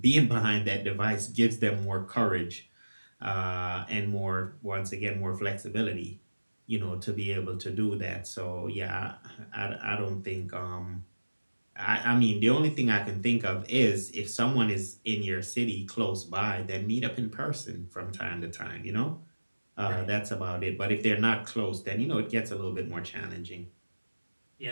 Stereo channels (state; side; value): inverted; both; correlation -1.00